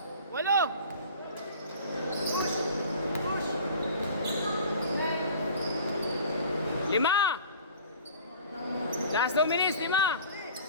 8. Lima. Last 2 minutes, 5.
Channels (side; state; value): both; inverted; correlation -0.44